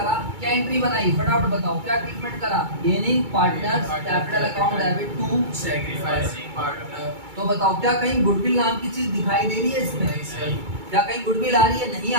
क्या एंट्री बनाई फटाफट बताओ, क्या ट्रीटमेंट करा? Gaining partners, capital account debit to sacrificing partner. तो बताओ क्या कहीं गुडविल नाम की चीज दिखाई दे रही है इसमें? नहीं सर। क्या कहीं गुडविल आ रही है? नहीं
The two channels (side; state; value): left; late; 2.3 ms